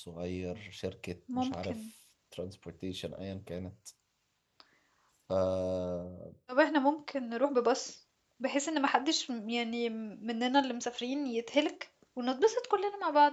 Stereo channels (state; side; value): identical; both; correlation 1.00